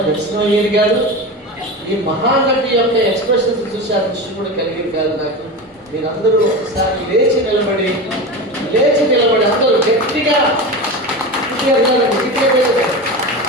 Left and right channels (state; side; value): normal; both; correlation 0.25